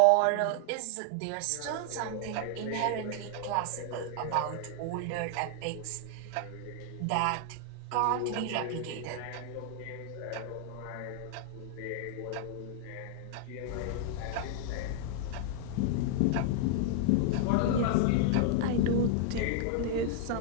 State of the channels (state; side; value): different; both; correlation 0.00